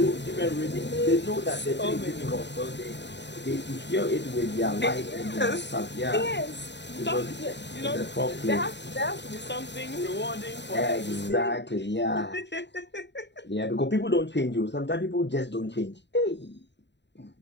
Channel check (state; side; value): late; right; 0.51 ms